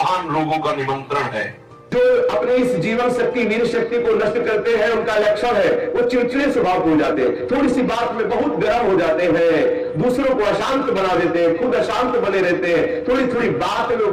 रोगों का निमंत्रण है। जो अपनी इस जीवन शक्ति, वीर शक्ति को नष्ट करते हैं उनका लक्षण है वो चिड़चिड़े स्वभाव हो जाते हैं, थोड़ी सी बात में बहुत गर्म हो जाते हैं, दूसरों को अशांत बना देते हैं, खुद अशांत बने रहते हैं, थोड़ी थोड़ी बात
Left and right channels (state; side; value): identical; both; correlation 1.00